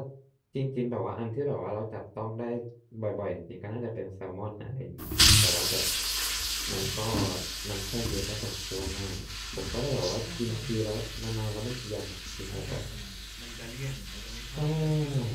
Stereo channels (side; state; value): both; identical; correlation 1.00